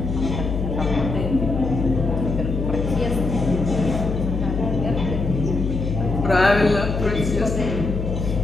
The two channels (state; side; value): noise; left; hum, 3 dB below the sound